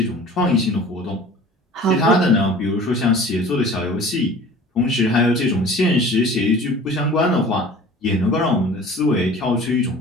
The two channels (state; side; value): normal; both; correlation 0.44